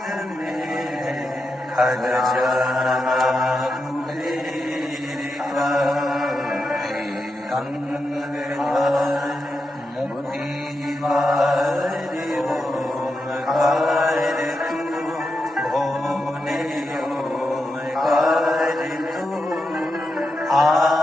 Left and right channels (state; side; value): normal; both; correlation 0.87